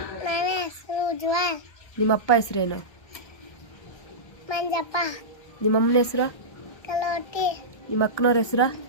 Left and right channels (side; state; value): right; late; 1.3 ms